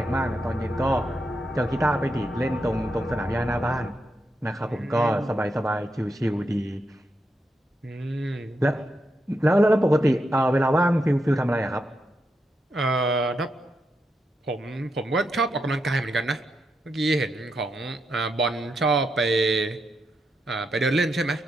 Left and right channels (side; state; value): both; normal; correlation 0.84